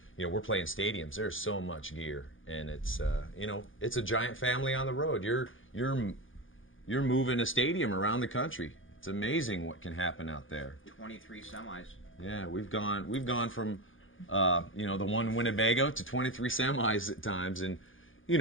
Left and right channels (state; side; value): late; right; 0.58 ms